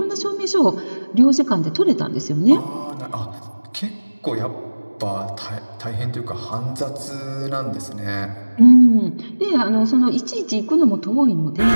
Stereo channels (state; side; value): inverted; both; correlation -1.00